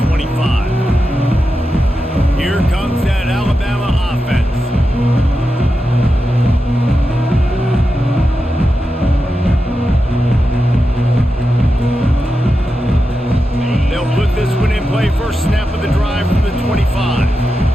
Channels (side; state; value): both; normal; correlation 0.90